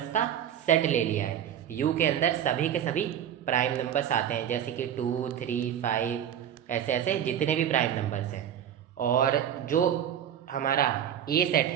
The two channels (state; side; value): quieter; left; 9.8 dB